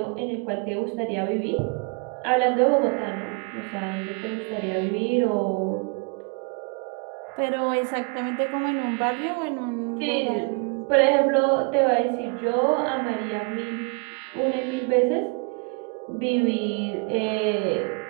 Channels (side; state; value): left; quieter; 32.4 dB